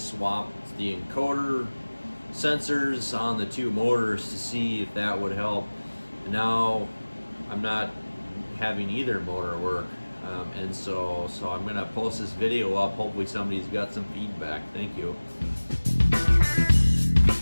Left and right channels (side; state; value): both; inverted; correlation -1.00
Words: the encoder sensors on the two motors to see if that would help. And now I'm not having either motor work, and so I'm gonna post this video up. Hopefully somebody's got some feedback. Thank you.